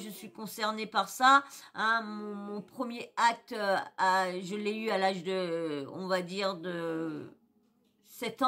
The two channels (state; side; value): identical; both; correlation 1.00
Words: suis concernée par ça, hein, mon premier acte, je l'ai eu à l'âge de, on va dire, de 7